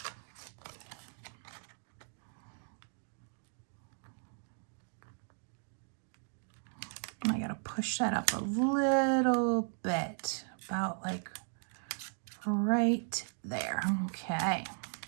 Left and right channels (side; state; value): left; silent; 53 dB below the other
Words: I gotta push that up a little bit, about like right there. Okay.